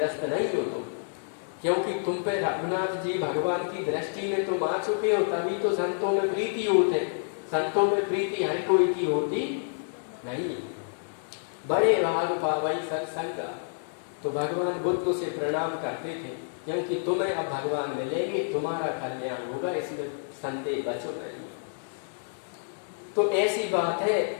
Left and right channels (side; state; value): right; silent; 59 dB below the other